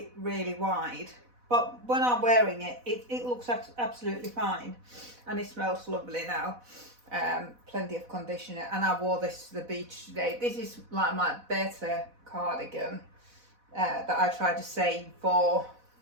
wide, but when I'm wearing it, it looks absolutely fine, and it smells lovely now. Plenty of conditioner, and I wore this to the beach today. This is like my better cardigan that I try to save for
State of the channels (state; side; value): late; left; 4.1 ms